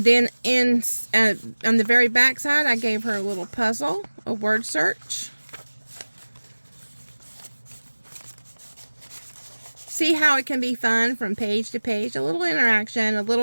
then on the very back side, I gave her a little puzzle, a word search. See how it can be fun from page to page. A little interaction, a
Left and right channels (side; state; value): both; inverted; correlation -1.00